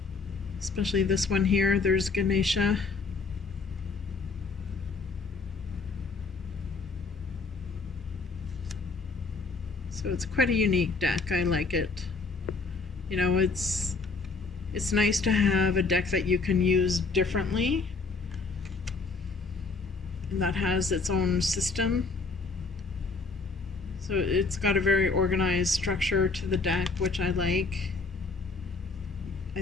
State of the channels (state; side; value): quieter; right; 4.1 dB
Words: Especially this one here, there's Ganesha. So it's quite a unique deck. I like it. You know, it's nice to have a deck that you can use differently and that has its own system. So it's got a very organized structure to the deck, which I like.